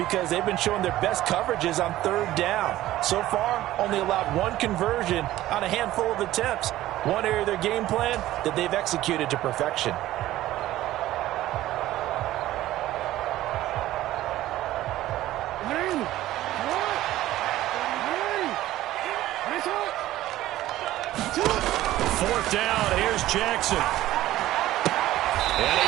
they've been showing their best coverages on third down. So far, only allowed one conversion on a handful of attempts. One area of their game plan that they've executed to perfection. Fourth down, here's Jackson. And he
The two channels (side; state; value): left; quieter; 15.0 dB